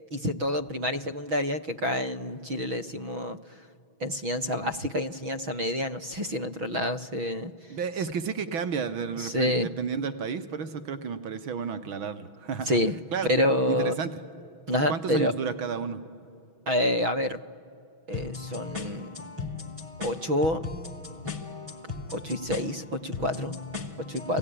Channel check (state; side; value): late; left; 6.2 ms